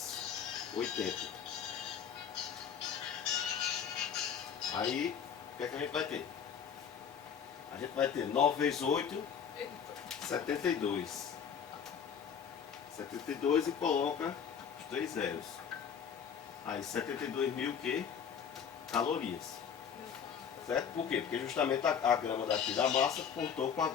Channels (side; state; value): right; quieter; 7.6 dB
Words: 80. Aí, o que é que a gente vai ter? A gente vai ter 9 vezes 8, 72. 72 e coloca os 3 zeros. Aí 72 mil que? Calorias. Certo? Por quê? Porque justamente a grama daqui da massa cortou com a